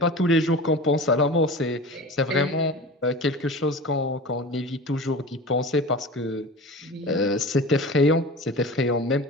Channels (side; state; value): both; normal; correlation 0.35